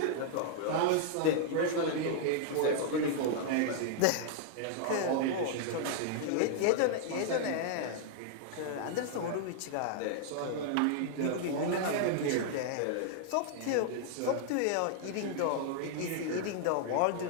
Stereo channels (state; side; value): different; both; correlation -0.01